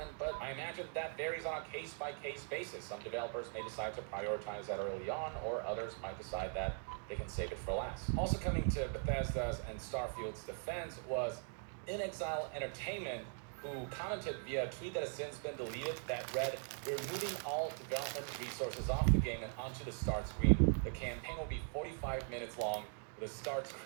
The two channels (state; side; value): silent; left; 51 dB below the other